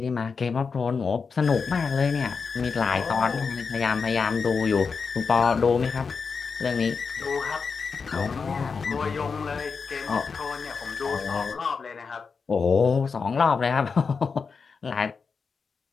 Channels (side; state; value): right; quieter; 5.2 dB